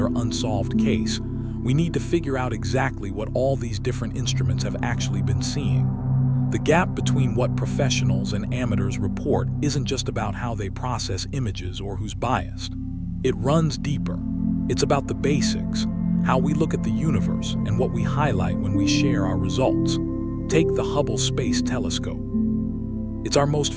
unsolved case, we need to figure out exactly what all these different instruments have actually been seeing. The gap between what professionals and amateurs report isn't just about how they process images or who's biased. It runs deeper. It's about the basics, how we look at the universe, and what we highlight when we share our results. Take the Hubble Space Telescope. It's our most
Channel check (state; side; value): identical; both; correlation 1.00